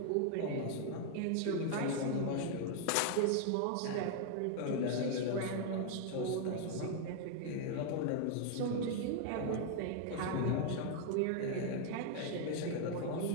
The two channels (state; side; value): different; both; correlation 0.00